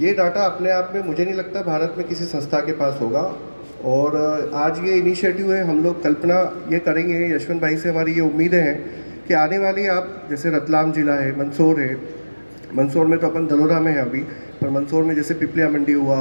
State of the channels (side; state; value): both; inverted; correlation -1.00